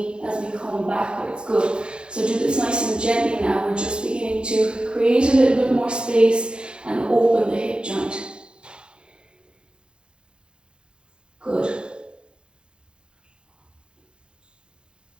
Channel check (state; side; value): late; left; 0.052 ms